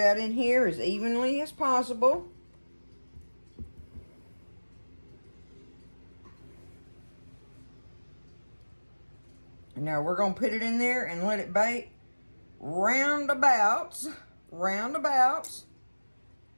in here as evenly as possible. And now we're going to put it in there and let it bake roundabouts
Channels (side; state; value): both; inverted; correlation -1.00